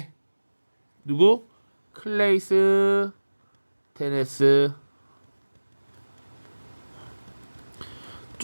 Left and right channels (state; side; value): inverted; both; correlation -1.00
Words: 누구? 클레이스 테네스.